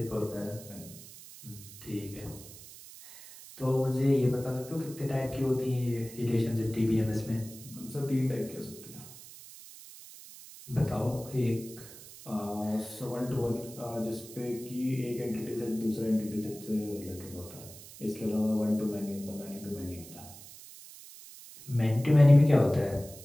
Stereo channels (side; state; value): right; noise; hiss, 17 dB below the sound